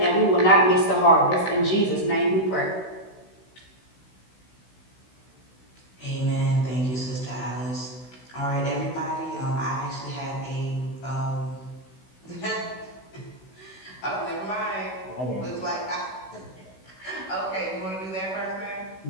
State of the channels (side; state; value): right; late; 16 ms